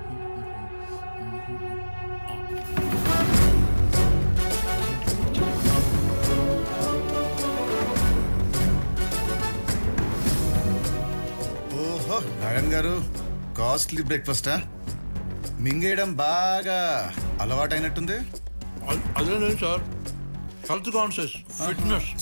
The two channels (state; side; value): inverted; both; correlation -1.00